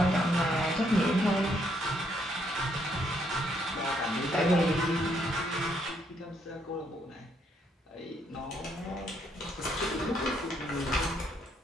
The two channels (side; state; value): both; normal; correlation 0.72